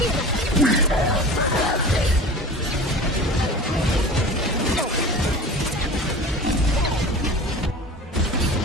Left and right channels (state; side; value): normal; both; correlation 0.36